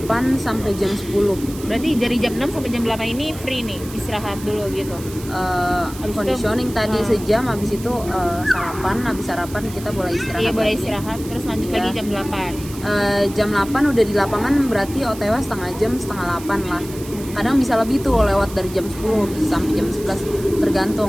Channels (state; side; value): noise; right; hiss, 16 dB below the sound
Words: sampai jam 10. Berarti dari jam 6 sampai jam 8 ini free nih, istirahat dulu gitu. Conditioning tadi sejam, habis itu sarapan, habis sarapan kita boleh istirahat. Iya, boleh istirahat, terus lanjut lagi jam 8. Jam 8 udah di lapangan, berarti OTW setengah jam, setengah 8 lah. Kadang bisa lebih tuh, lewat dari jam 10 bisa sampai jam 11,